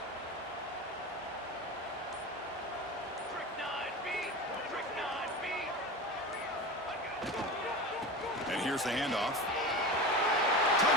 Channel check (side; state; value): both; normal; correlation 0.28